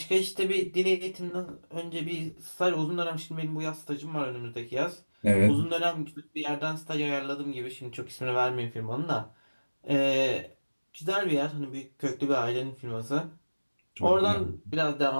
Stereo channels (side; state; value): both; inverted; correlation -1.00